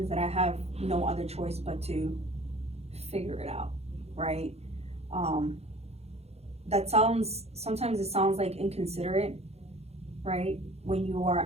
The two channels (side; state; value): left; late; 0.30 ms